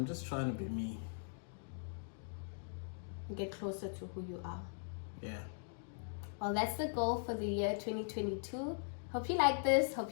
just trying to be me. Get closer to who you are. Yeah. Well, that's the goal for the year 2022. Hope you like this.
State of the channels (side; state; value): right; silent; digital silence